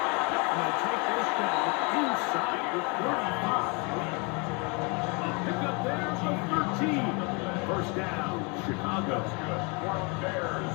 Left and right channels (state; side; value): quieter; right; 31.5 dB